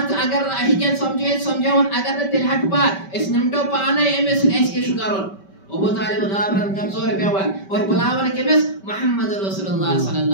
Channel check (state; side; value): late; right; 5.2 ms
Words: अगर हिकन समझावन अगर तिलहट पात इस निमटो पाने एमस ऐसे शुकरन अबू तालिब गाबरन कमजोर पेवन और बुलावन केमिस मोहम्मद रसूलुल्लाह